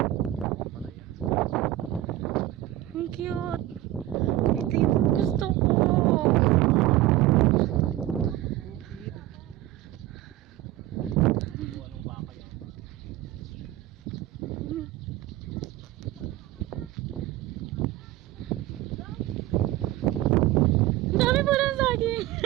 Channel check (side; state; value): left; quieter; 15.3 dB